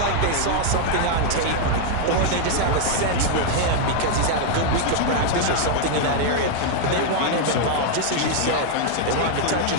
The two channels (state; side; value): different; both; correlation 0.00